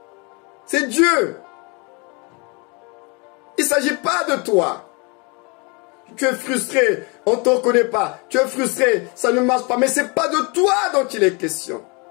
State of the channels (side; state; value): right; quieter; 30.6 dB